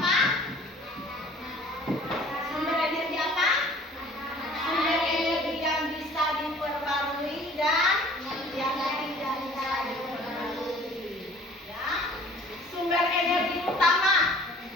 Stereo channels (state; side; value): normal; both; correlation 0.50